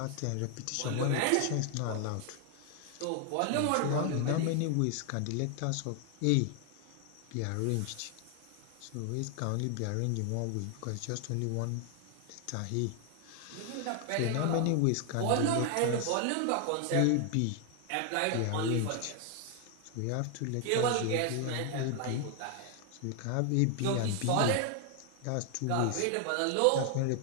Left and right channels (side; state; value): both; different; correlation 0.00